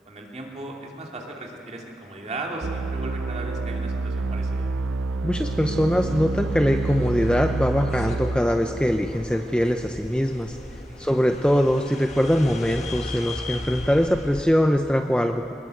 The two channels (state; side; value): normal; both; correlation 0.92